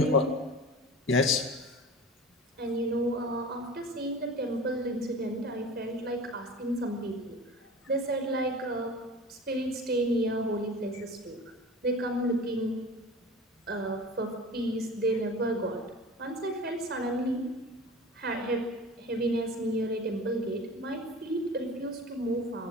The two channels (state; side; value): normal; both; correlation 0.37